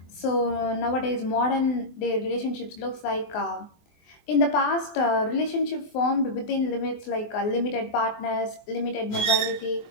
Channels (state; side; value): late; right; 24 ms